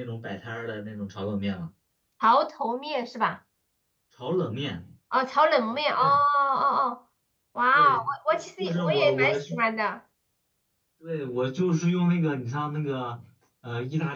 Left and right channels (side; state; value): both; identical; correlation 1.00